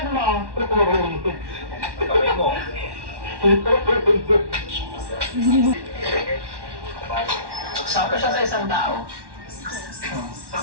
mo. Sakto siya sa isang tao.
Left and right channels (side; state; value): left; late; 1.1 ms